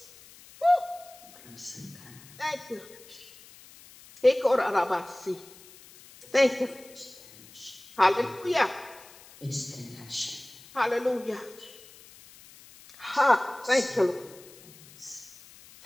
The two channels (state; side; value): noise; left; hiss, 22 dB below the sound